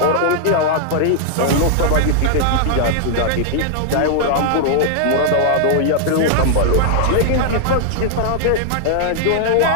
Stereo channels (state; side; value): different; both; correlation -0.01